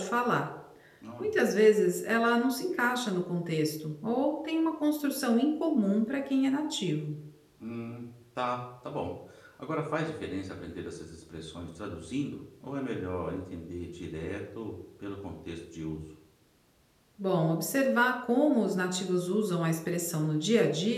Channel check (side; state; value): both; identical; correlation 1.00